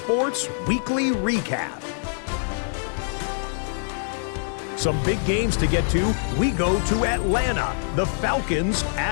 Weekly Recap. Some big games to get to. We go to Atlanta. The Falcons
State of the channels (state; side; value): silent; right; digital silence